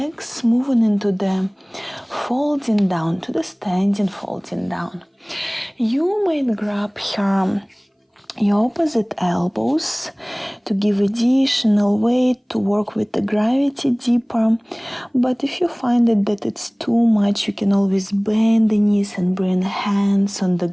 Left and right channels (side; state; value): both; identical; correlation 1.00